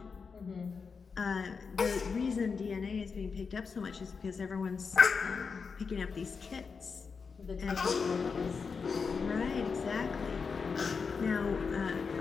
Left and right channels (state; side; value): quieter; right; 5.3 dB